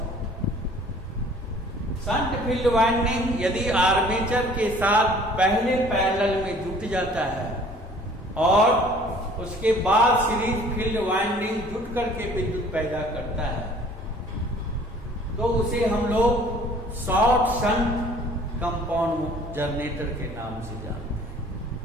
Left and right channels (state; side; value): normal; both; correlation 0.53